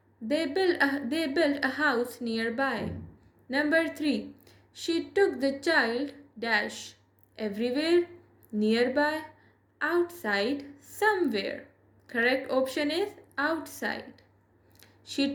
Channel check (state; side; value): identical; both; correlation 1.00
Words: They built a house nearby. Number 3. She took the child dash everywhere, nearby, outside, somewhere. Correct option is outside.